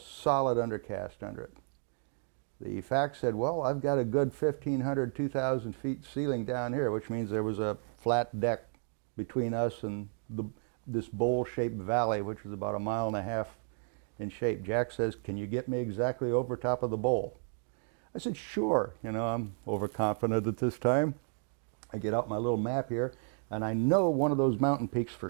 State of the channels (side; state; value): left; silent; 56 dB below the other